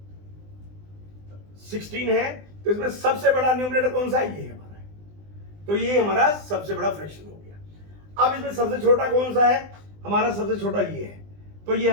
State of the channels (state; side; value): late; left; 20 ms